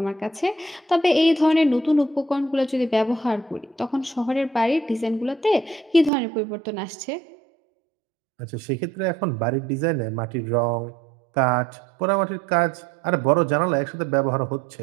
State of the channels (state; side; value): drops out; left; at 6.1 s